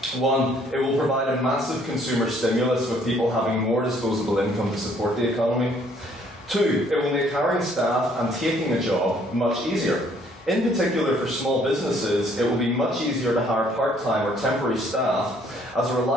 1. It will provide a massive consumer stimulus with people having more disposable income to support the economy. 2. It will make hiring staff and taking a job much easier. In particular for small businesses, it will be much easier to hire part-time or temporary staff as a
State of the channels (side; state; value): both; normal; correlation 0.63